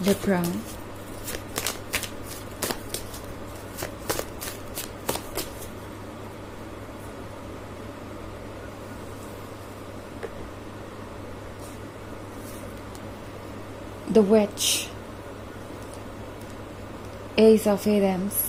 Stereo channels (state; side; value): identical; both; correlation 1.00